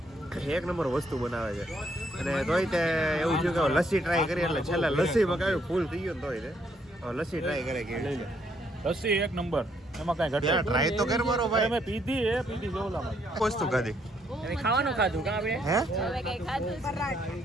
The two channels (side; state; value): both; normal; correlation 0.71